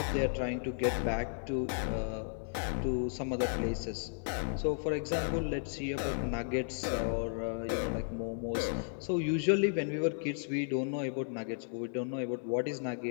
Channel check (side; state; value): right; silent; digital silence